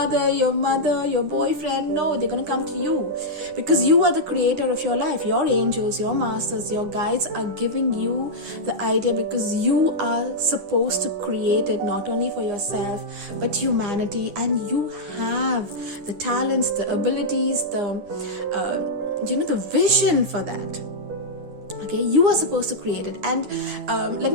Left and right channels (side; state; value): left; late; 9.7 ms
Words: your mother, your boyfriend. No, they're going to come to you, because you are the creator of your life. Your angels, your masters, your guides are giving you the idea, because you are supposed to create it, not only for yourself but humanity. And you have the talents, the abilities, the vision for that. Okay, you are supposed to create it. And let